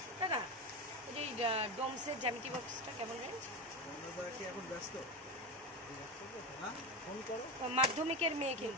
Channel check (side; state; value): both; normal; correlation 0.18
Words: দাদা এই যে ডোমসের জ্যামিতি বক্সটা কেমন রেঞ্জ? কি এখন ব্যস্ত? হ্যাঁ, ফোন করো। মাধ্যমিকের মেয়ে,